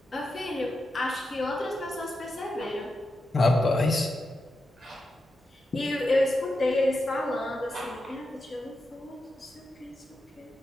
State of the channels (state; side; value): normal; both; correlation 0.88